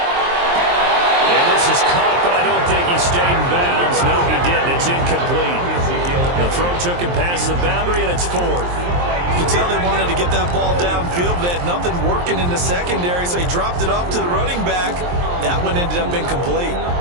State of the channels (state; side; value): late; left; 23 ms